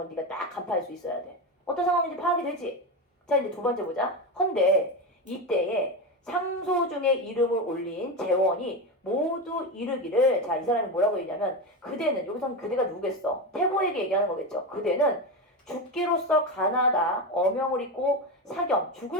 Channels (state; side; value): normal; both; correlation 0.17